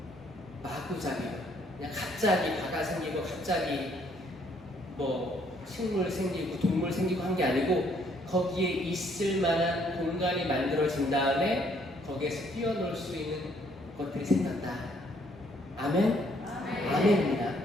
마구잡이. 그냥 갑자기 바다 생기고 갑자기 뭐 식물 생기고 동물 생기고 한 게 아니고 거기에 있을 만한 공간이 만들어진 다음에 거기에서 뛰어놀 수 있는 것들이 생겼다. 아멘? 아멘입니다.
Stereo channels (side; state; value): both; normal; correlation 0.66